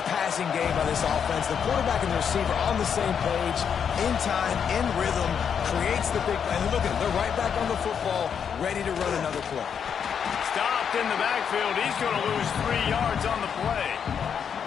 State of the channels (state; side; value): quieter; right; 7.4 dB